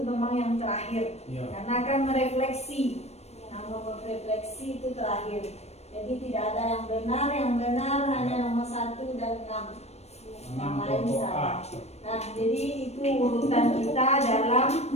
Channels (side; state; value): right; late; 0.31 ms